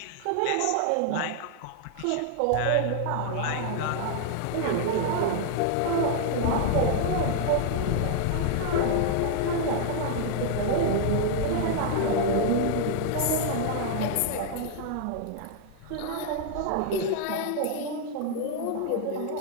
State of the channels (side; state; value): both; different; correlation 0.00